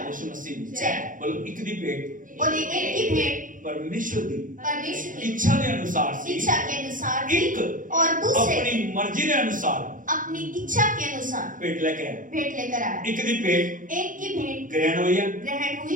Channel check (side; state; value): left; late; 0.39 ms